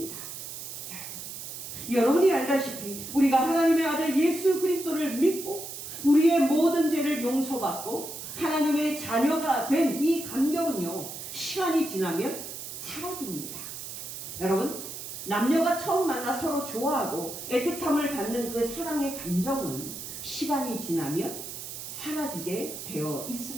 여러분이 알다시피 우리가 하나님의 아들 예수 그리스도를 믿고 우리의 모든 죄를 용서받고 하나님의 자녀가 된 이 감격은요, 시간이 지나면 사라집니다. 여러분, 남녀가 처음 만나 서로 좋아하고 애틋함을 받는 그 사랑의 감정은 시간이 지나면 사라지게 되어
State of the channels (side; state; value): right; noise; hiss, 9 dB below the sound